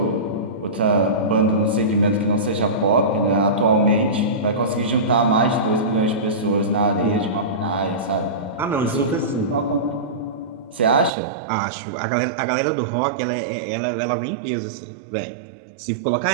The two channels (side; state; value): left; drops out; at 11.1 s